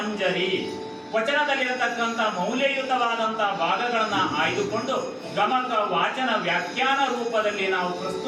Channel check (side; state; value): both; identical; correlation 1.00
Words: ವಚನದಲ್ಲಿರತಕ್ಕಂಥ ಮೌಲ್ಯಯುತವಾದಂಥ ಭಾಗಗಳನ್ನು ಆಯ್ದುಕೊಂಡು ಗಮಕ ವಾಚನ ವ್ಯಾಖ್ಯಾನ ರೂಪದಲ್ಲಿ ನಾವು